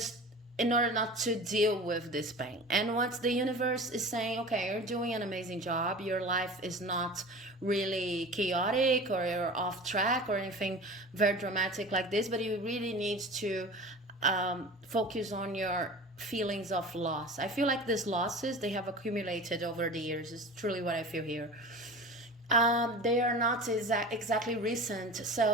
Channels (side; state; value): both; normal; correlation 0.36